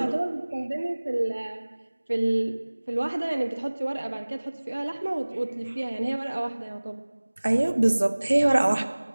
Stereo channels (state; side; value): inverted; both; correlation -1.00